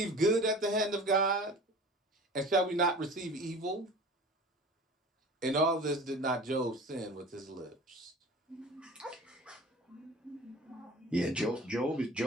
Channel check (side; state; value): both; normal; correlation 0.40